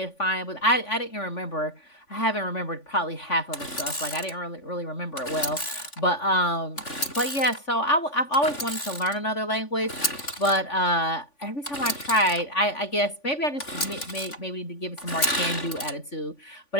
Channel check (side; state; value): right; late; 3.5 ms